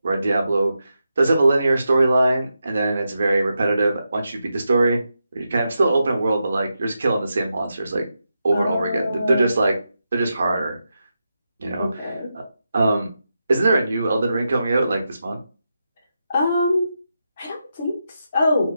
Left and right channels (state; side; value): inverted; both; correlation -0.87